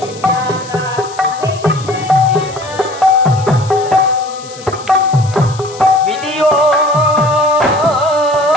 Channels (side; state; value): left; noise; hiss, 18 dB below the sound